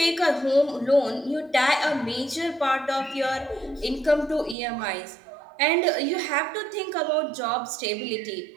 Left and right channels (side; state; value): left; drops out; at 4.5 s